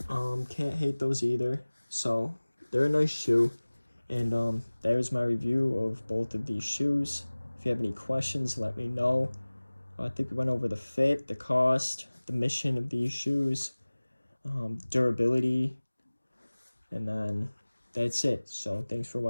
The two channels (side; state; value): both; inverted; correlation -1.00